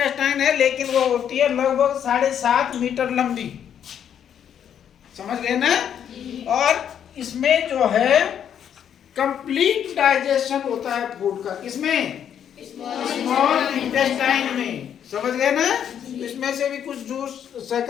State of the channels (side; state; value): right; quieter; 9.0 dB